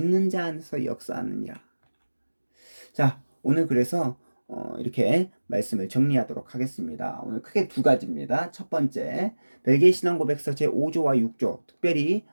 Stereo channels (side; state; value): both; inverted; correlation -1.00